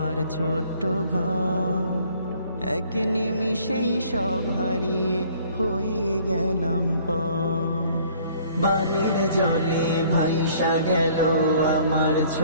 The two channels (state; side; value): inverted; both; correlation -0.57